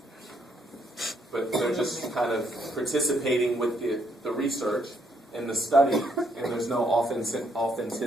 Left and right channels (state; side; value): normal; both; correlation 0.72